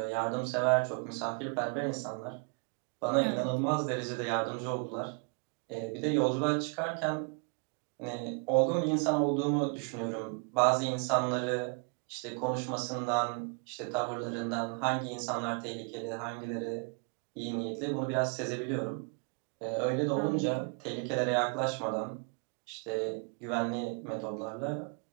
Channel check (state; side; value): quieter; left; 38.4 dB